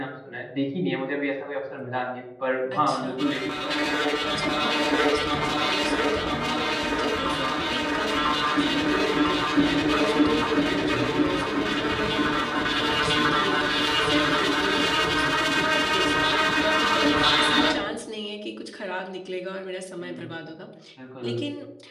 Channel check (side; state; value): both; identical; correlation 1.00